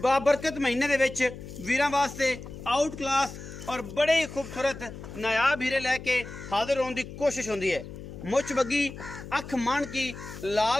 बाबरकत महीने दे विच वीरां वास्ते आउट क्लास और बड़े ही खूबसूरत नायाब हीरे लैके हाजिर होने की कोशिश होंदी है। मुछ बग्गी अख मान की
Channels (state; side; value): noise; left; hum, 12 dB below the sound